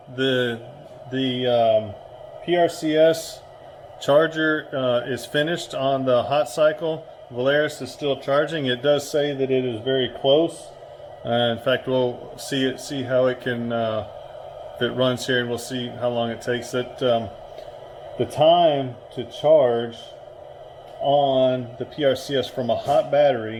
the PRCS charger is finished on the hot cycle. Volarious is still charging. It does say that it is very close. In fact, we'll see how it can, if it runs here, and we'll see how long it takes. That the time to charge on the PRCS from a hot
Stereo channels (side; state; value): both; identical; correlation 1.00